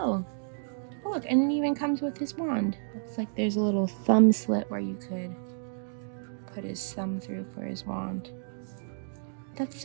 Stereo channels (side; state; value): left; silent; digital silence